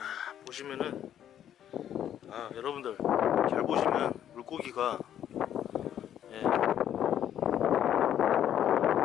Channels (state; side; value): quieter; right; 10.4 dB